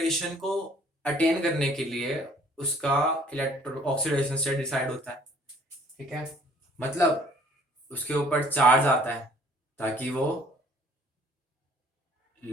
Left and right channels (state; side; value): normal; both; correlation 0.56